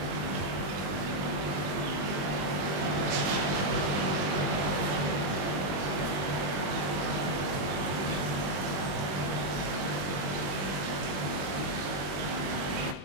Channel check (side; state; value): left; late; 20 ms